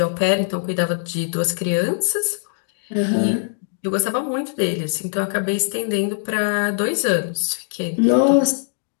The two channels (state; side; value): silent; right; digital silence